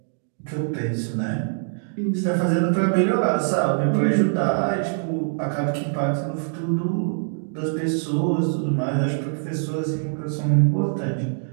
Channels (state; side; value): silent; left; digital silence